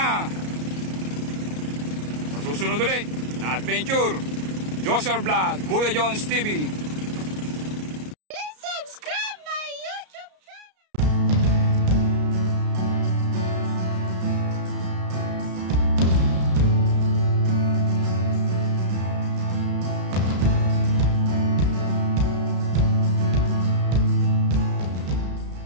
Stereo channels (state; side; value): late; left; 33 ms